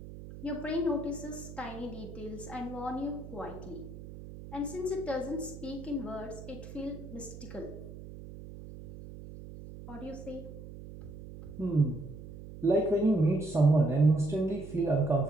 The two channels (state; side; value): noise; right; hum, 13 dB below the sound